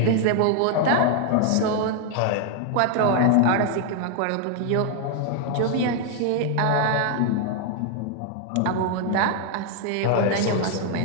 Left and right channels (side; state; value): both; different; correlation 0.00